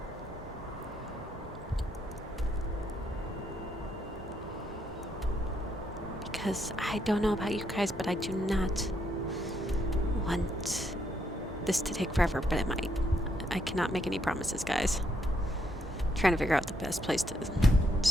Because I don't know about you guys, but I do not want this to take forever, but it might. I cannot make any promises, guys. Trying to figure out the best place to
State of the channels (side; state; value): both; normal; correlation 0.75